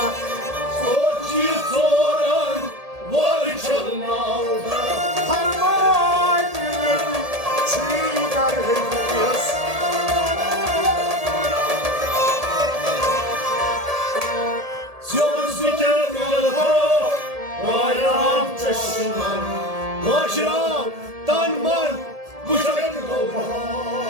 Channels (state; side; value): late; left; 1.8 ms